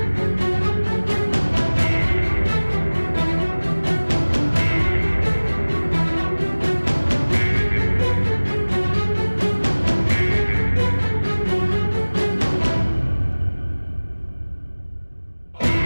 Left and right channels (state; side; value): inverted; both; correlation -1.00